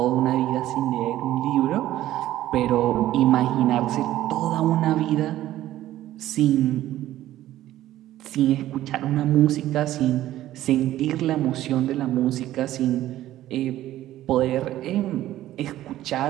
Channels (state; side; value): quieter; left; 14.0 dB